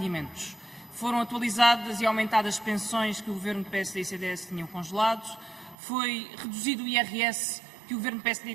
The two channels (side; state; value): left; drops out; at 5.8 s